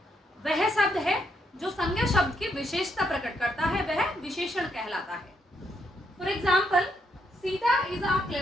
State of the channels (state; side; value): normal; both; correlation 0.77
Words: वह शब्द है जो संज्ञा शब्द की विशेषता प्रकट करता है, वह विशेषण कहलाता है। For example, Sita is a